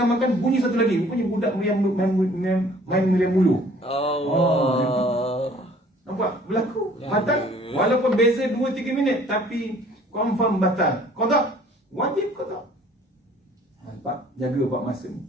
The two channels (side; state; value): both; normal; correlation 0.55